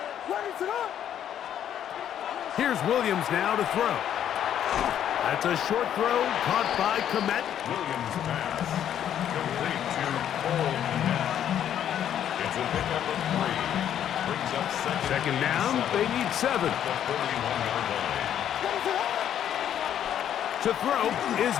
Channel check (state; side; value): quieter; right; 10.1 dB